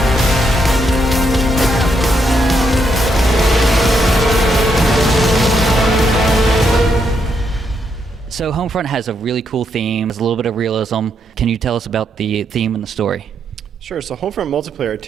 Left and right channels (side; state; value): both; normal; correlation 0.78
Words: So Homefront has a really cool theme. There's a little bit of realism. Can you tell us about the theme and the story? Sure. So Homefront multiplayer